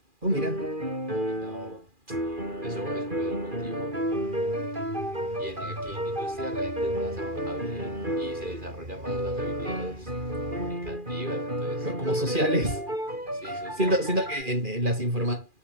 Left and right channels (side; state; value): left; late; 2.4 ms